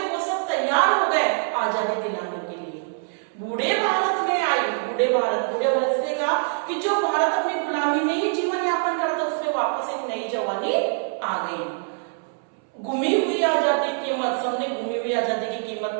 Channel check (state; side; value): silent; left; 62 dB below the other